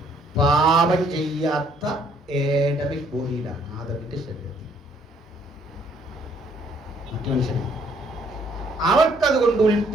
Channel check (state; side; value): normal; both; correlation 0.65